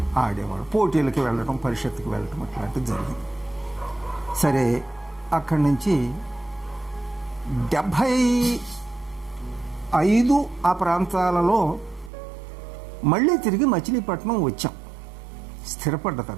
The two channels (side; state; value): left; drops out; at 12.1 s